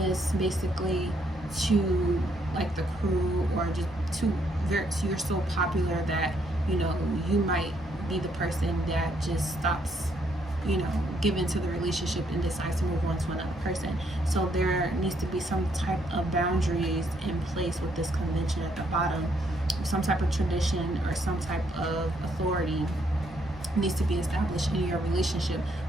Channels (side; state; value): both; normal; correlation 0.72